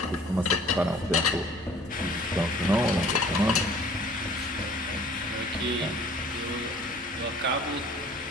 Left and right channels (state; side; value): normal; both; correlation 0.51